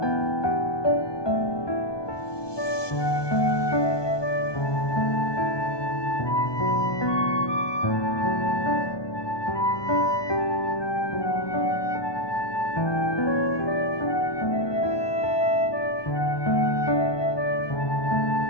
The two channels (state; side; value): late; right; 1.2 ms